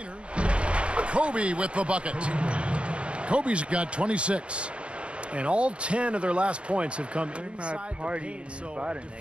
Kobe with the bucket. Kobe's got 26. And all 10 of their last points have come not inside the partying paint. and So fighting,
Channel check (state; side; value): late; left; 0.058 ms